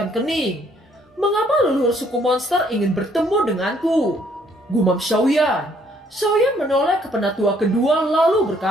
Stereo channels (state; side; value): normal; both; correlation 0.65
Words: kening. Mengapa leluhur suku monster ingin bertemu denganku? Gumam Xiaoyan. Xiaoyan menoleh ke penatua kedua lalu